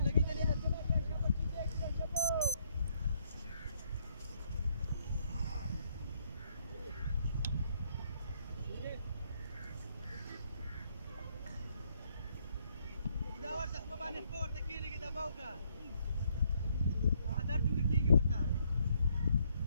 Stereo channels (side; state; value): both; inverted; correlation -0.71